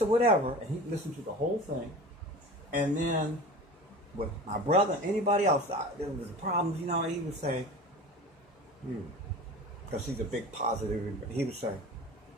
or whatever, and he listened to the whole thing. And then with my brother, anybody else, there was problems, you know, he would say, because he's a big positive, he would say,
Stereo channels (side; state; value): both; normal; correlation 0.36